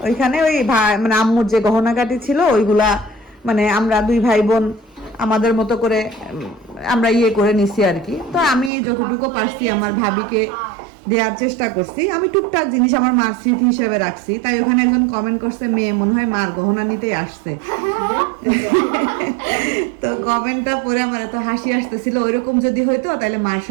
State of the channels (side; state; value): left; drops out; at 8.7 s